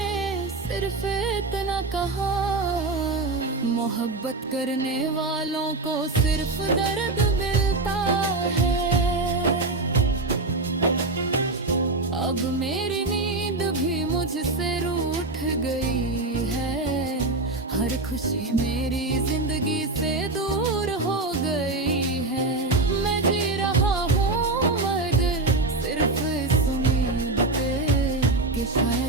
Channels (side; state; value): left; quieter; 3.2 dB